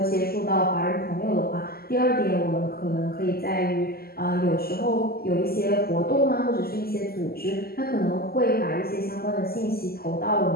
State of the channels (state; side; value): late; right; 0.45 ms